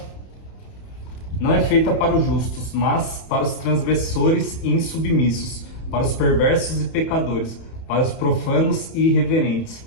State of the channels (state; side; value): late; right; 31 ms